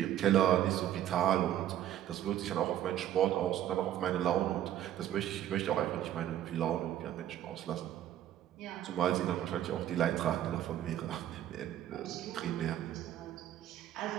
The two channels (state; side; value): quieter; left; 11.8 dB